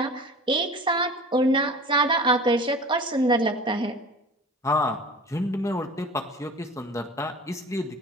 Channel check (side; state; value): both; normal; correlation 0.39